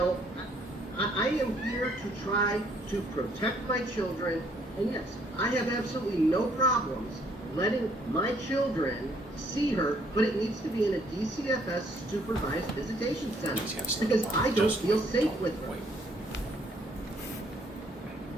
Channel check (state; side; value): normal; both; correlation 0.65